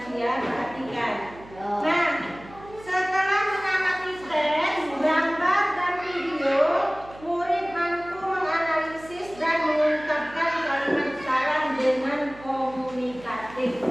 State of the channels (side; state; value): right; noise; hum, 19 dB below the sound